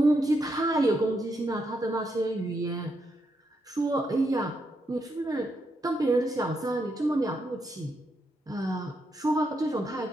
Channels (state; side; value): normal; both; correlation 0.81